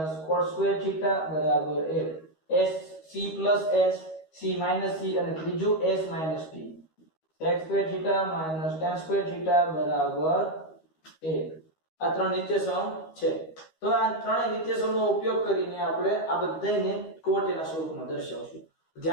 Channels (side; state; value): right; late; 13 ms